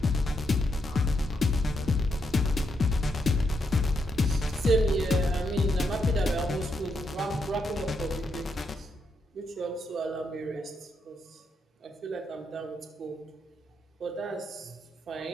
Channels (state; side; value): normal; both; correlation 0.80